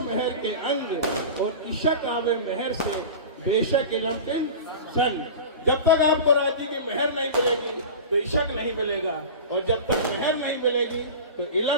के अंग और इशक आवे मेहर से बेशक इलम के संग। जब तक आपको राजी की मेहर नहीं मिलेगी तो इशक नहीं मिलेगा और जब तक मेहर नहीं मिलेगी तो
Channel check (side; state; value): both; inverted; correlation -0.32